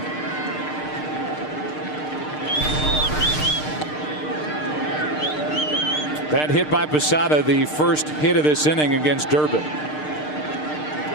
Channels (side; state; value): right; late; 6.6 ms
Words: That hit by Posada, the first hit of this inning against Durbin.